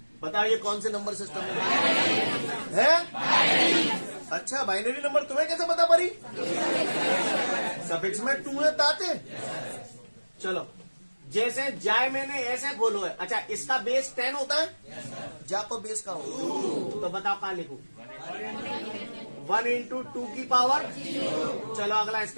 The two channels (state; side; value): inverted; both; correlation -1.00